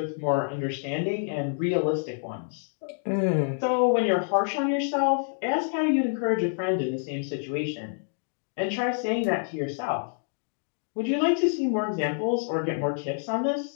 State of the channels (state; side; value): silent; right; digital silence